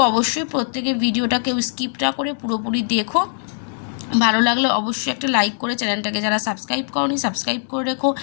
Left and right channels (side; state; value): right; silent; 65 dB below the other